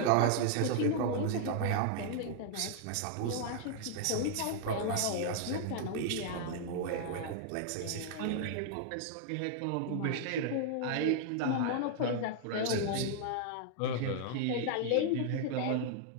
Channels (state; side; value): different; both; correlation 0.00